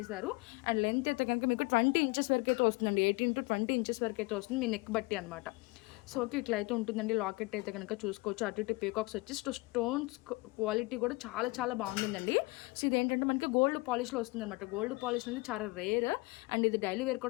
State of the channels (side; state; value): right; quieter; 24.5 dB